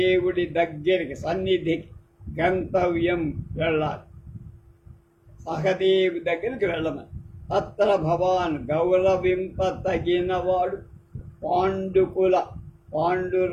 దగ్గరికి సన్నిధికి గంతవ్యం వెళ్ళాలి, సహదేవి దగ్గరికి వెళ్ళమని. తత్ర భవాన్ గౌరవింపతగినవాడు పాండుకుల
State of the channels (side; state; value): both; identical; correlation 1.00